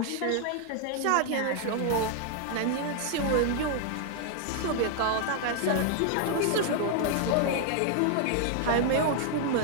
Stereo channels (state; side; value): different; both; correlation 0.00